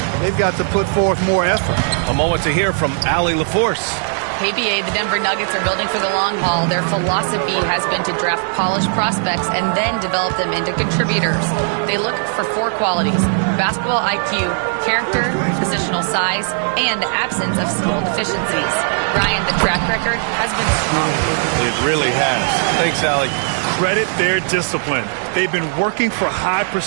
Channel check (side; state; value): left; silent; digital silence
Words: they've got to put forth more effort. A moment to hear from Allie LaForce. KBA, the Denver Nuggets are building for the long haul. Their philosophy has been to draft polished prospects and then develop them into contributors. They look for 4 qualities: basketball IQ, character, positional size, and absence of skill deficiencies. Ryan, the track record has been strong. It really has. Thanks, Allie. Credit their discipline. They've been working for high